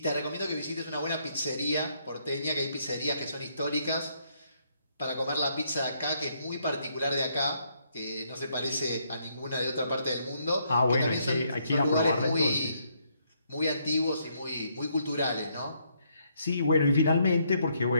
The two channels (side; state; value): both; inverted; correlation -0.73